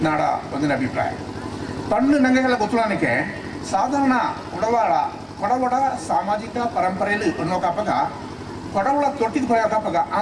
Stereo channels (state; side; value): identical; both; correlation 1.00